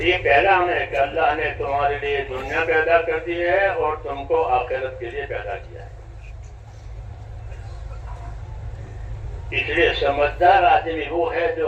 پیغام ہے کہ اللہ نے تمہارے لیے دنیا پیدا کر دی ہے اور تم کو آخرت کے لیے پیدا کیا ہے۔ اس لیے سمجھدار آدمی وہ ہے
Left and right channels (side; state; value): both; identical; correlation 1.00